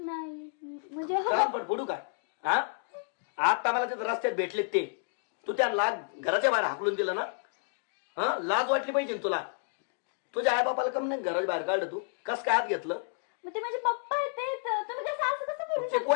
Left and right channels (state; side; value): silent; right; digital silence